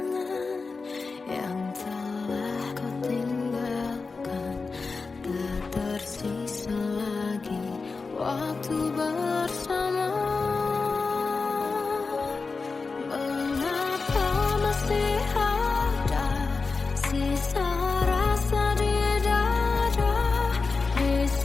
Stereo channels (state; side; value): quieter; right; 4.3 dB